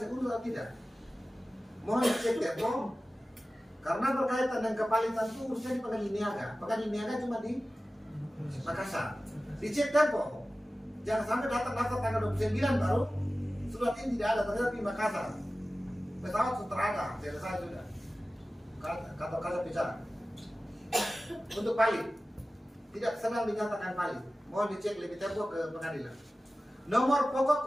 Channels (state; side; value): normal; both; correlation 0.96